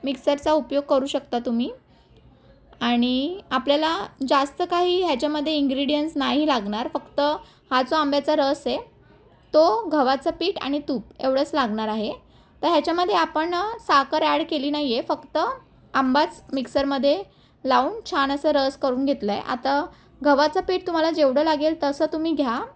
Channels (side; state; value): both; identical; correlation 1.00